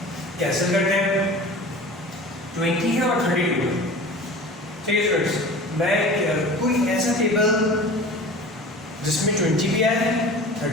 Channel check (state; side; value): normal; both; correlation 0.39